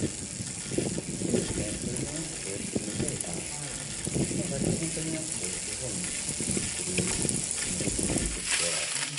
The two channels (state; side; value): identical; both; correlation 1.00